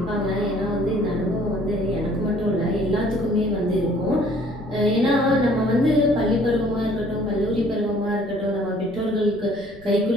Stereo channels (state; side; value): noise; left; rumble, 23 dB below the sound